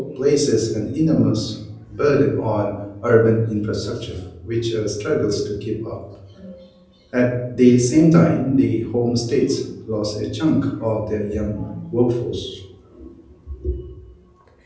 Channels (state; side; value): identical; both; correlation 1.00